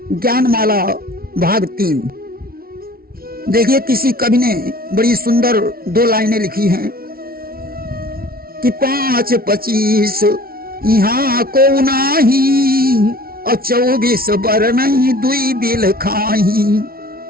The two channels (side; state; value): left; late; 0.44 ms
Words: ज्ञानमाला भाग 3। देखिए, किसी कवि ने बड़ी सुंदर 2 लाइनें लिखी हैं कि 5-25 यहाँ को नाही और 24 बर नहीं दुई बिल खाही,